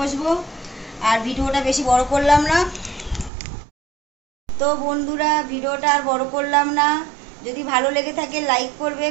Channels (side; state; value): left; drops out; at 3.3 s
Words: আর ভিডিওটা বেশি বড় করলাম না। তো বন্ধুরা ভিডিওটা আর বড় করলাম না। যদি ভালো লেগে থাকে লাইক করবে,